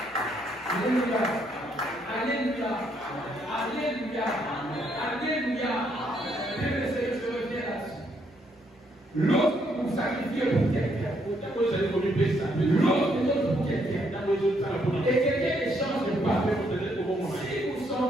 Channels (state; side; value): normal; both; correlation 0.72